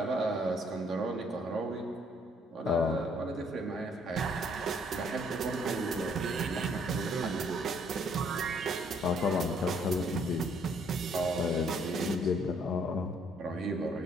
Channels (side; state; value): both; normal; correlation 0.65